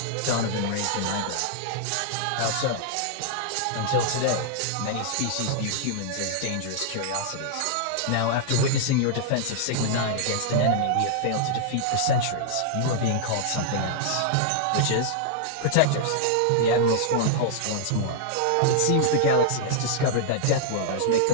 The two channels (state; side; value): different; both; correlation -0.01